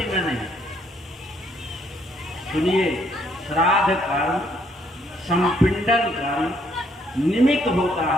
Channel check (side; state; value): both; normal; correlation 0.69